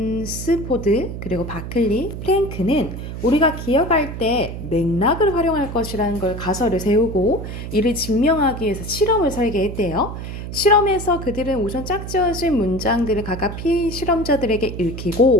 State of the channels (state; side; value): noise; right; hum, 8 dB below the sound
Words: 그리고 바클리, 프랭크는 우리가 기억할 때 맥락을 활용할 것이라는 걸 가설을 세우고 이를 증명하기 위해서 실험을 설계했대요. 실험에서 그들은 우선 짝지어진 문장들을 각각 피실험자들에게